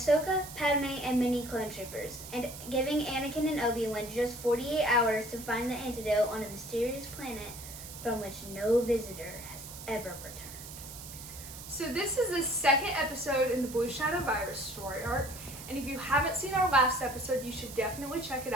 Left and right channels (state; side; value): noise; right; hiss, 13 dB below the sound